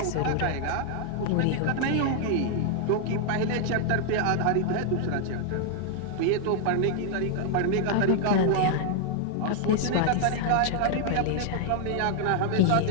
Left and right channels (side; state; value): both; different; correlation 0.00